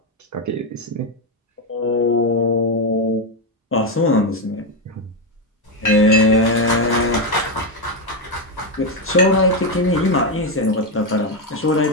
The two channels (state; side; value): normal; both; correlation 0.07